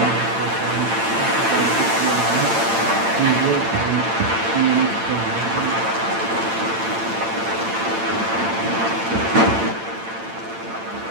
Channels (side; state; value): left; late; 8.9 ms